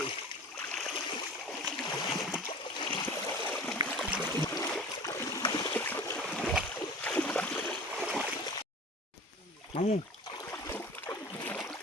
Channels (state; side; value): normal; both; correlation 0.39